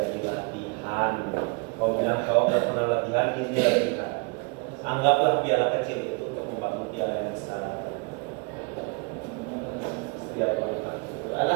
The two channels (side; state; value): left; quieter; 34.0 dB